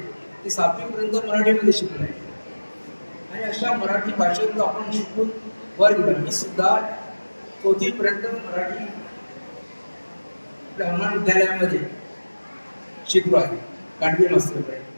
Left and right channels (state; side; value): inverted; both; correlation -1.00